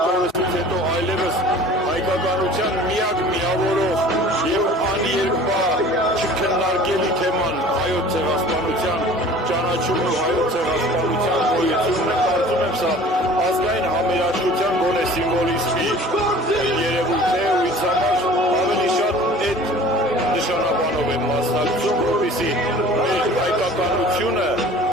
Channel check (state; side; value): normal; both; correlation 0.46